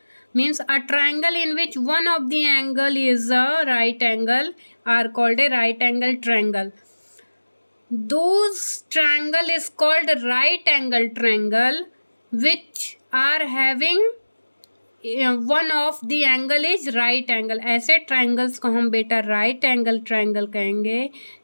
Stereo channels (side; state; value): both; inverted; correlation -1.00